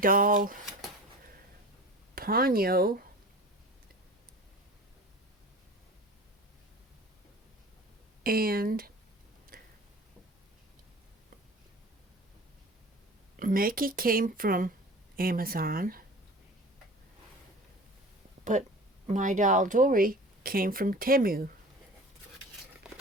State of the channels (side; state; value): both; normal; correlation 0.39